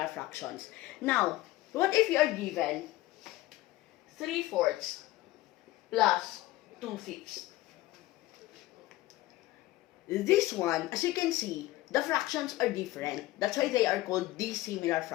fractions. Now, what if you are given 3/4 plus 2/5? This one, as you can see, the fractions are different. That's why they are called dissimilar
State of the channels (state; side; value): quieter; right; 17.2 dB